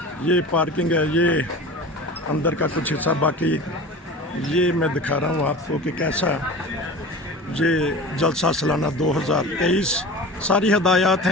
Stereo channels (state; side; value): normal; both; correlation 0.35